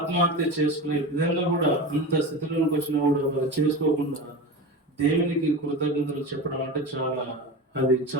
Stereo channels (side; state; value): both; normal; correlation 0.27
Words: చేసుకునే విధంగా కూడా అంత స్థితిలోకి వచ్చినా కూడా వాళ్ళు చేసుకోకుండా దేవునికి కృతజ్ఞతలు చెప్పడం అంటే చాలా అది